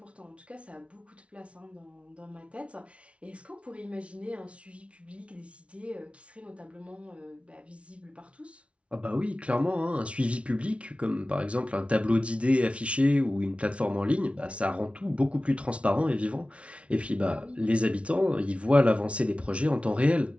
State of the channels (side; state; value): left; late; 0.061 ms